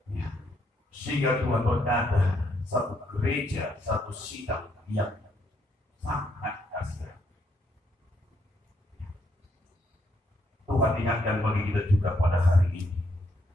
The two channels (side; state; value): both; normal; correlation 0.74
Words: Sehingga Tuhan berkata, satu gereja, satu sidang yang sangat kasihan. Tuhan ingatkan bagi kita juga pada hari ini.